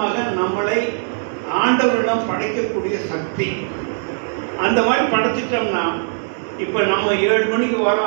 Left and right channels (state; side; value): silent; left; digital silence